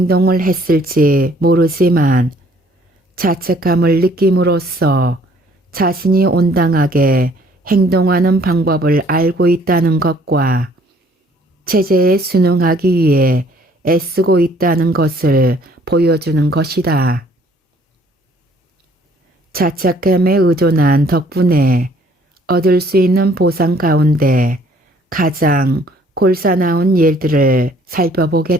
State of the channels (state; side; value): normal; both; correlation 0.60